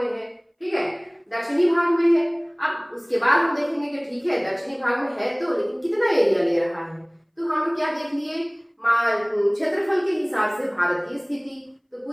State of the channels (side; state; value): both; identical; correlation 1.00